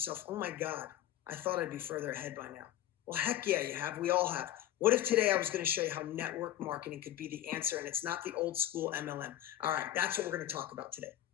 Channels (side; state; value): right; quieter; 12.7 dB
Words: oh my God, I thought I'd be further ahead by now? Well, heck yeah, you have. We all have. What if today I was going to show you how network marketing could be the answer, and it's not the old school MLM? All right, that's what we're going to talk about today.